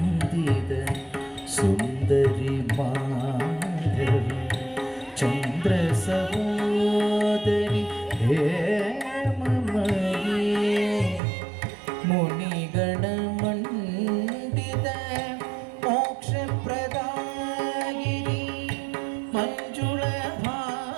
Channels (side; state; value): left; drops out; at 11.2 s